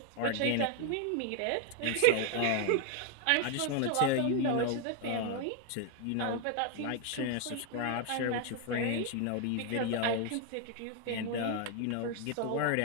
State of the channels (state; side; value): different; both; correlation 0.01